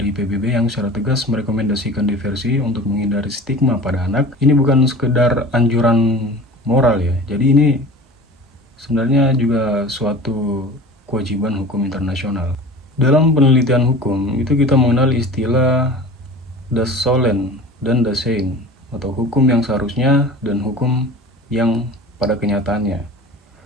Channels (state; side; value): normal; both; correlation 0.38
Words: PBB yang secara tegas merekomendasikan diversi untuk menghindari stigma pada anak. Ini bukan sekedar anjuran moral ya. Jadi ini sebenarnya juga suatu kewajiban hukum internasional. Dalam penelitian hukum itu kita mengenal istilah das Sollen dan das Sein, atau hukum yang seharusnya dan hukum yang pada kenyataannya.